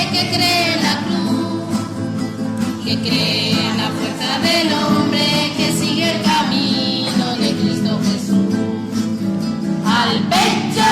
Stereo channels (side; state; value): both; identical; correlation 1.00